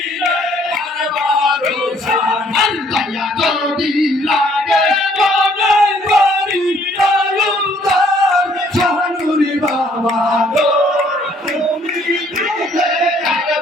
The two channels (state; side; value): normal; both; correlation 0.63